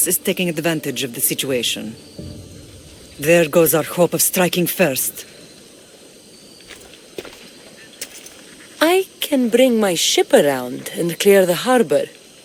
is taking advantage of the situation. There goes our hope of striking first. I can bring my ship around and clear the harbor.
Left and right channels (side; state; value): both; identical; correlation 1.00